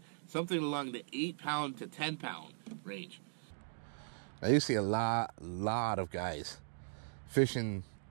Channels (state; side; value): silent; left; digital silence